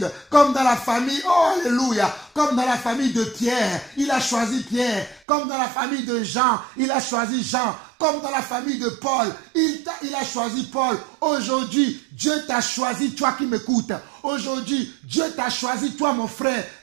Comme dans la famille, oh alléluia, comme dans la famille de Pierre, il a choisi Pierre. Comme dans la famille de Jean, il a choisi Jean. Comme dans la famille de Paul, il a choisi Paul. Aujourd'hui, Dieu t'a choisi, toi qui m'écoutes. Aujourd'hui, Dieu t'a choisi, toi mon frère,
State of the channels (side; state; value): left; drops out; at 5.2 s